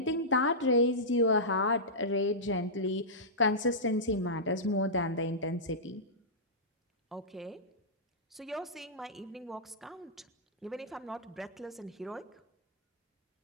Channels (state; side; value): normal; both; correlation -0.14